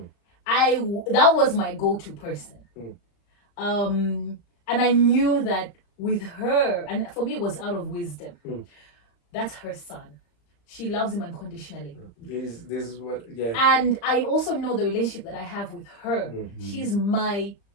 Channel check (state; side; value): late; right; 35 ms